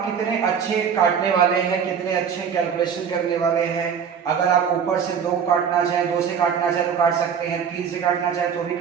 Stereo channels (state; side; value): quieter; left; 7.2 dB